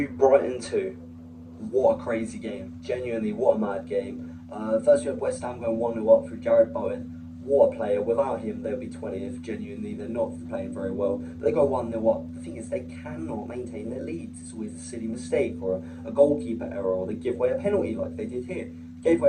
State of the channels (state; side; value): identical; both; correlation 1.00